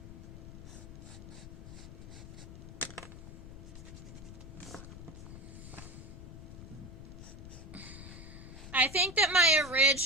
I think that my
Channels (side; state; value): left; noise; rumble, 12 dB below the sound